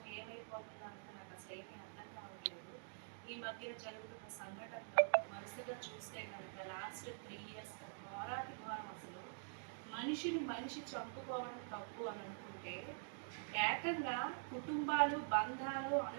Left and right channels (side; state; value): left; silent; digital silence